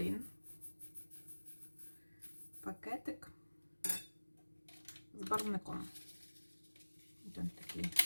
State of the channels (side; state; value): both; inverted; correlation -1.00